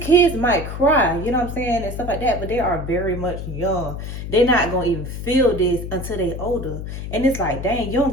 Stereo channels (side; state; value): left; noise; hum, 7 dB below the sound